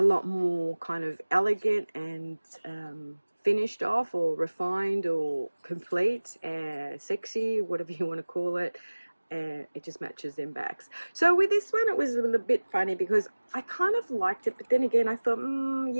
lot more kind of elegant and finished off, or refined, or complete, sexy, whatever you want to call it. It just matches them backs. So with this one, it was a little bit funny because I kind of liked it, but then again I thought,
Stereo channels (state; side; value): inverted; both; correlation -1.00